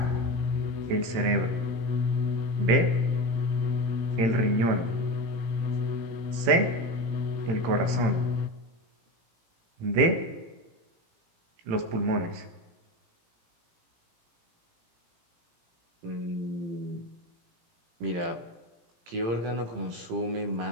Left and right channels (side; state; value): left; late; 18 ms